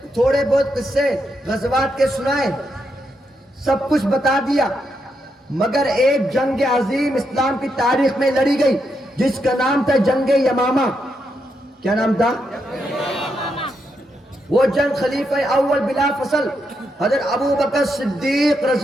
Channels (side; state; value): both; normal; correlation 0.81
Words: تھوڑے بہت قصے غزوات کے سنائے، سب کچھ بتا دیا، مگر ایک جنگ عظیم اسلام کی تاریخ میں لڑی گئی جس کا نام تھا جنگ یمامہ۔ کیا نام تھا؟ وہ جنگ خلیفہ اول بلا فصل حضرت ابو بکر صدیق